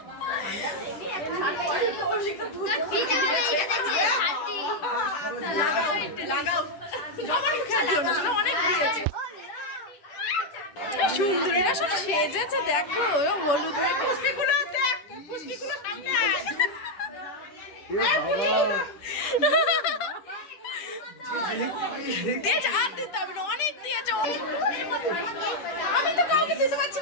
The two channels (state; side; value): late; right; 10 ms